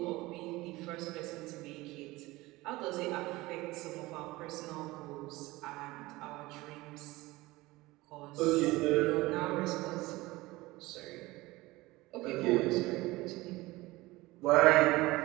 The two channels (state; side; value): quieter; left; 20.1 dB